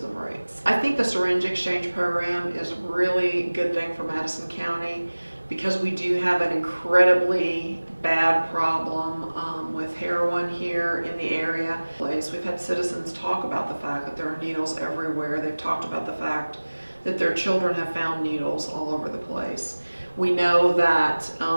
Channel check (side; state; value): both; inverted; correlation -1.00